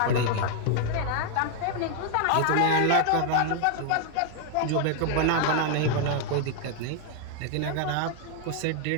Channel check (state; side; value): different; both; correlation 0.00